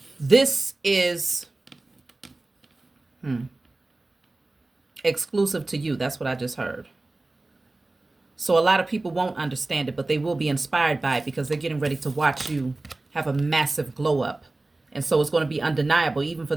This is Exclusive to you. That's what I just heard. So a lot of people won't understand it, but they will be inspired by it because they're getting ready to watch you have a massive glow up. And so it's going to be undeniable, even for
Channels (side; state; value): left; quieter; 3.0 dB